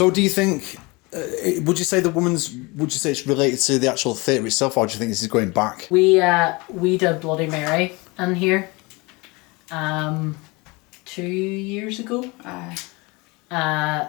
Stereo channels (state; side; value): quieter; right; 25.7 dB